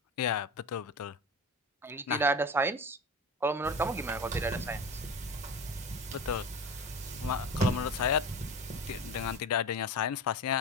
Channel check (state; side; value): normal; both; correlation 0.29